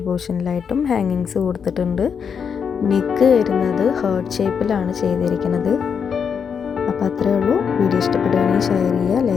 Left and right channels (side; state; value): right; quieter; 6.8 dB